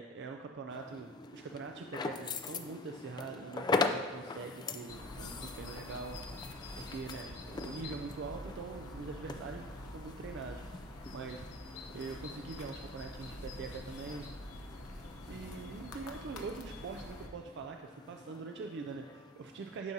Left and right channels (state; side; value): normal; both; correlation 0.38